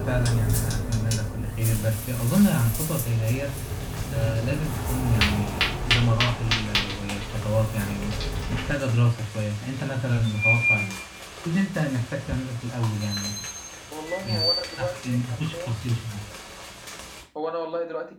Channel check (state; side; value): identical; both; correlation 1.00